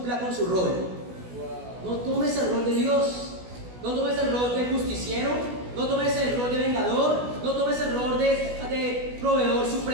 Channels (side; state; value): left; late; 16 ms